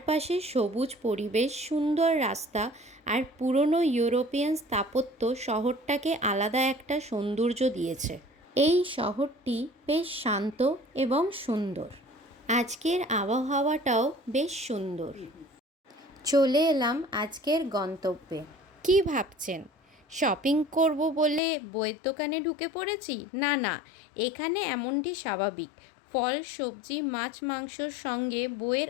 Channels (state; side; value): drops out; right; at 21.4 s